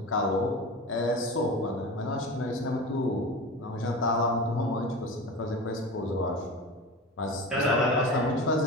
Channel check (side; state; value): both; normal; correlation 0.30